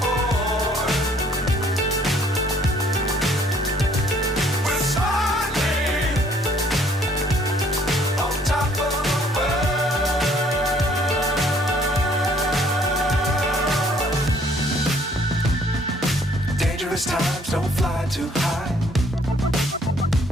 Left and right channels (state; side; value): normal; both; correlation 0.61